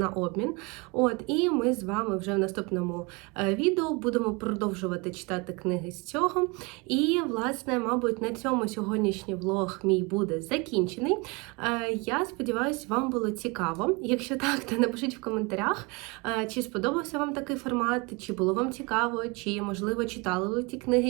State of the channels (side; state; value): left; quieter; 28.1 dB